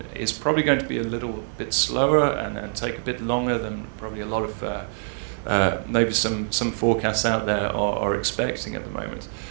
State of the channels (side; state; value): left; silent; 56 dB below the other